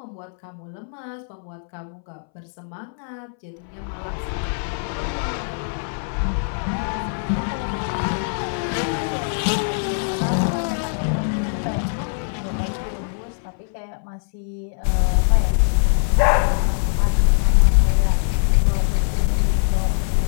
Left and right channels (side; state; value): right; silent; 64 dB below the other